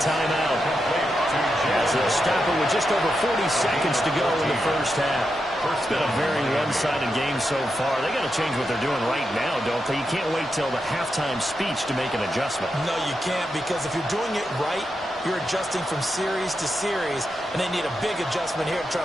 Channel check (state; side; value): normal; both; correlation 0.86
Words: timeout as they'll stop it with just over 40 seconds to go in the first half. It's been a very one-sided game so far. They got to change what they're doing right now, don't they? You can't wait till the halftime speech to make an adjustment. No, you can't, because if you're doing it right, you're adjusting from series to series, and they need a big adjustment here to try